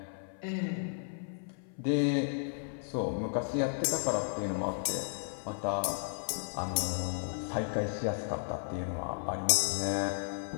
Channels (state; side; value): silent; right; 55 dB below the other